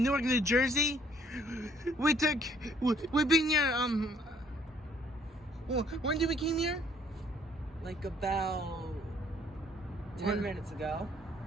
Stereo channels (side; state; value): both; normal; correlation 0.63